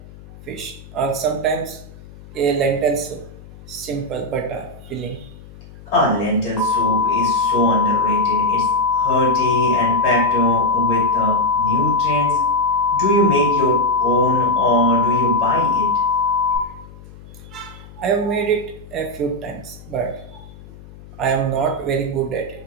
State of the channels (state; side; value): noise; left; hum, 19 dB below the sound